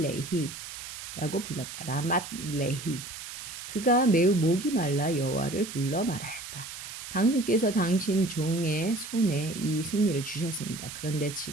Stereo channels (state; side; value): noise; right; hiss, 10 dB below the sound